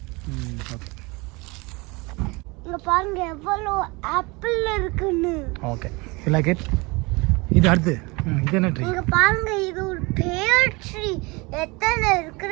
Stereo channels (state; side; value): quieter; left; 26.0 dB